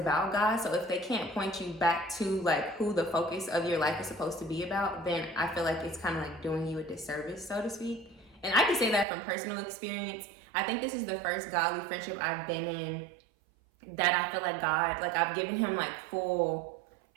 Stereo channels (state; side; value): drops out; left; at 9.1 s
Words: God. So if they can't point you back to like who the focus of your life is supposed to be about, then I feel like it's kind of like doing you a disservice, so to speak. And I can say that from personal experience. I think this is the first godly friendship I've been in that I feel like God, like I've given him like full